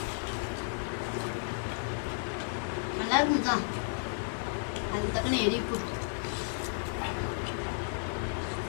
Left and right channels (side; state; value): right; silent; digital silence